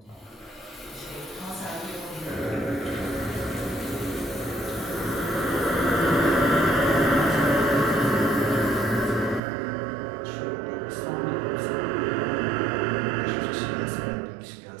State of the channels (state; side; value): drops out; left; at 9.4 s